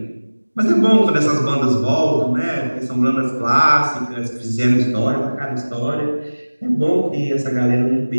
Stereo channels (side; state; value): both; inverted; correlation -1.00